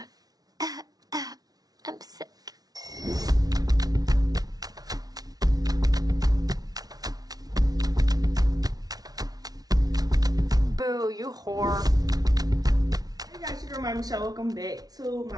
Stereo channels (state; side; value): late; left; 0.19 ms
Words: I'm sick. Boo, you whore. Hey guys, your girl my Michelle. Welcome back to